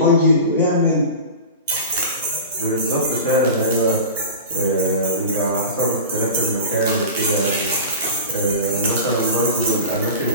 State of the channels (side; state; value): both; inverted; correlation -0.31